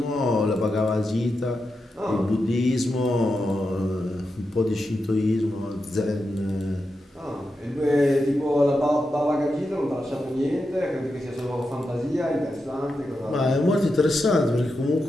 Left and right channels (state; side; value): normal; both; correlation 0.88